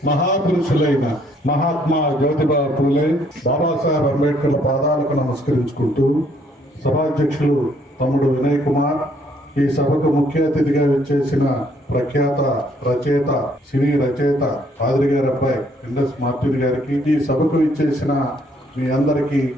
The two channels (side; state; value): both; normal; correlation 0.66